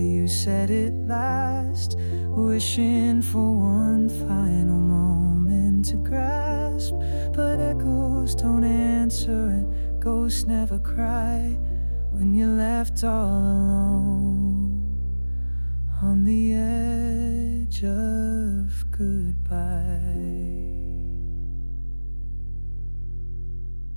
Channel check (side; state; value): both; inverted; correlation -1.00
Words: said it last, wishing for one final moment to grasp. But echoes don't answer and ghosts never cry when you're left all alone on the edge of goodbye.